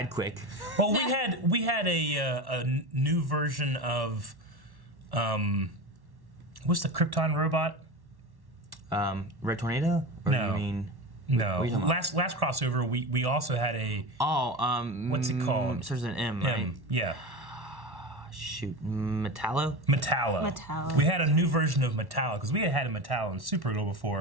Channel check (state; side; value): late; left; 1.1 ms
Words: quick. Well, we had a new version of what's the Krypton robot? Red Tornado. Or No. You mean? No. What are you talking about? Last crossover, we also had a What's it called? Starts with an M, right? Yeah. Shoot, Metallo. Metallo. We had a new version of Metallo because we had a Metallo in Supergirl